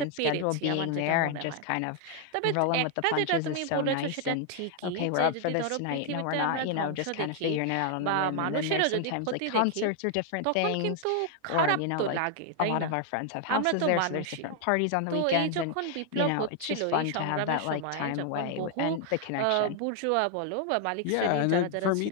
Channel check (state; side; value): different; both; correlation 0.00